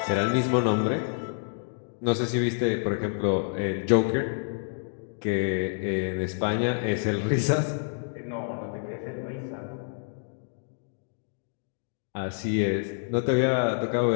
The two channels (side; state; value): right; silent; digital silence